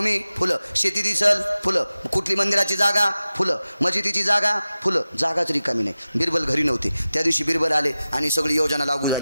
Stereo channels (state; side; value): inverted; both; correlation -0.95